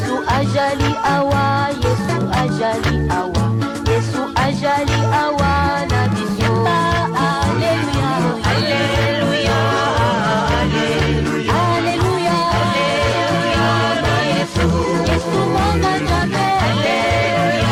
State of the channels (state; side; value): identical; both; correlation 1.00